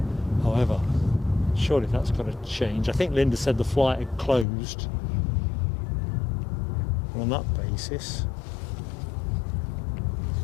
However, surely that's got to change. I think Linda said the flight had closed. On that basis,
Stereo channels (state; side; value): drops out; right; at 4.5 s